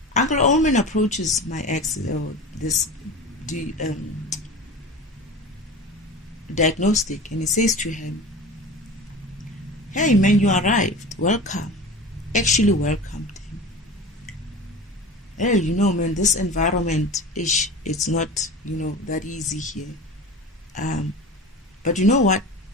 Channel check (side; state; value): both; normal; correlation 0.34